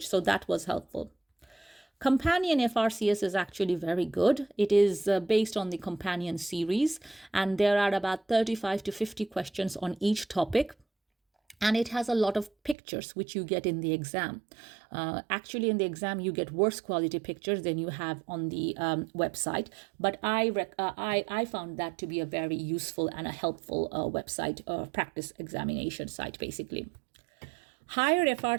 So that was helpful. Companion FRCS is actually very good. It is based on the Companion series, and there are about 35 to 50 questions on each topic. And it has a lot of pictures, which you get in the exam. Actually, in the exam, you get worse quality pictures than you have on the website. But I found that to be a very useful and a helpful website, practice examination site, basically. Higher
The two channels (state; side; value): drops out; left; at 12.8 s